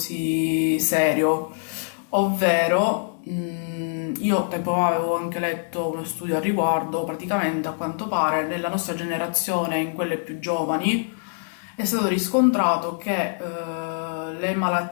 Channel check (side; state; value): right; silent; digital silence